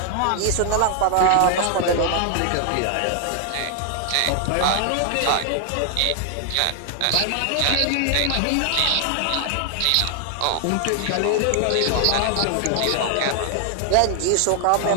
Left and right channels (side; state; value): both; different; correlation 0.00